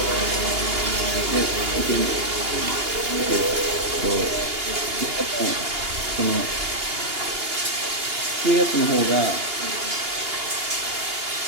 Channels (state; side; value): late; left; 2.8 ms